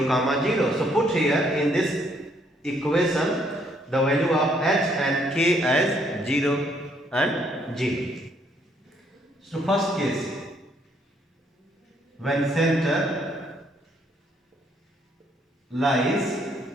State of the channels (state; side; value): normal; both; correlation 0.69